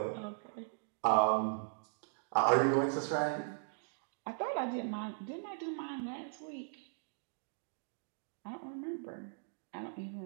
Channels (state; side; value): silent; left; digital silence